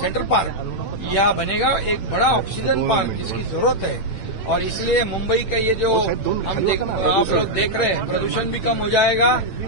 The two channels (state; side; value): late; right; 9.0 ms